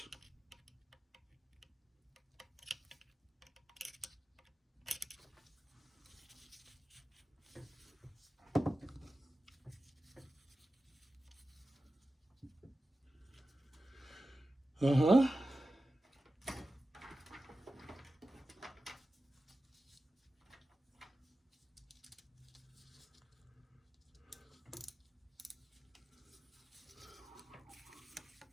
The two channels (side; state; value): both; normal; correlation 0.94